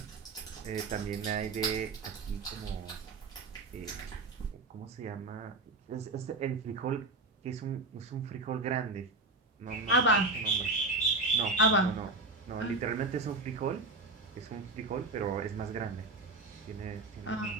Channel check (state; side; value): quieter; left; 3.3 dB